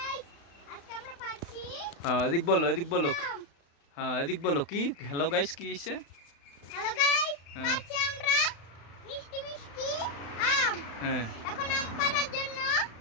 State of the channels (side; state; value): right; late; 35 ms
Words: হ্যাঁ এদিক বলো, এদিক বলো। হ্যাঁ এদিক বলো কি হ্যালো গাইস কি এসে? হ্যালো গাইস, হ্যাঁ পাচ্ছি আমরা মিষ্টি মিষ্টি আম। হ্যাঁ এখন আম পাড়ার জন্য